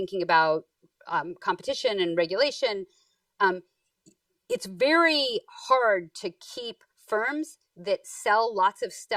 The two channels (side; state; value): both; identical; correlation 1.00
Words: about competition and regulation. It's very hard to keep firms that sell lots of